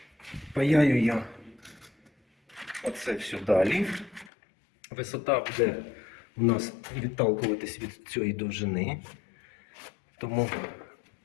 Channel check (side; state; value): right; drops out; at 4.3 s